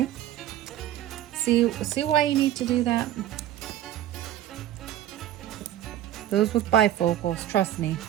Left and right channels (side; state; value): left; quieter; 12.5 dB